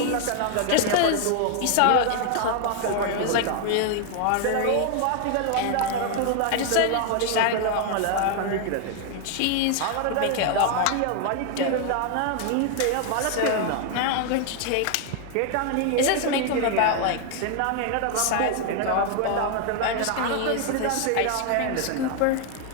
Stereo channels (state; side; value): different; both; correlation 0.00